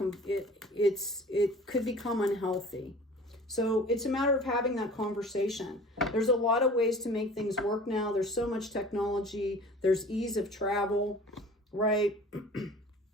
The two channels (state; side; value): normal; both; correlation 0.44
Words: it could become unhealthy. So it's a matter of having that conversation. There's a lot of ways to make things work now. There's so much technology. There's ease of travel, right?